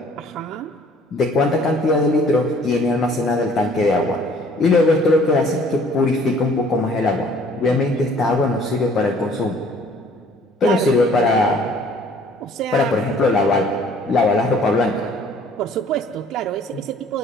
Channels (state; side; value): normal; both; correlation 0.56